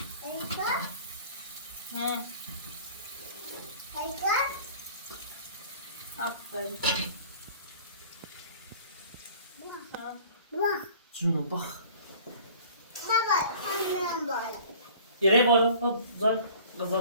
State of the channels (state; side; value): inverted; both; correlation -0.48